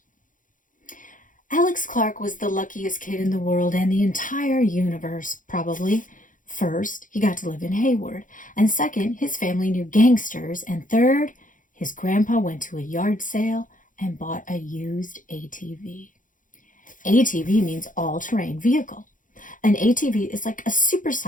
Alex Clark was the luckiest kid in the world and the entire universe, probably. First, he got to live in Hayward, and second, his family knew gangsters, and third, his grandpa went to a yard sale and bought a used ATV. ATV means all-terrain vehicle. An ATV is like a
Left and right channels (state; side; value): late; right; 0.38 ms